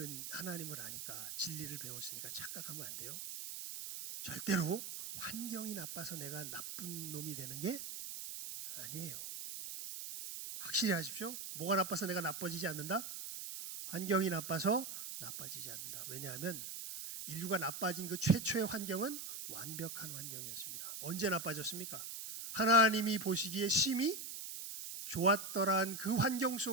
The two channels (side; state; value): right; noise; hiss, 7 dB below the sound